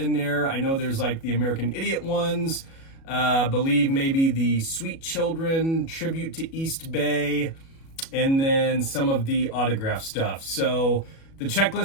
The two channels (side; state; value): right; late; 37 ms